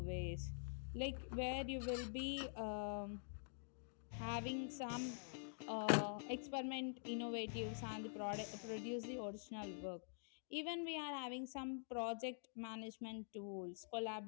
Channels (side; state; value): right; silent; digital silence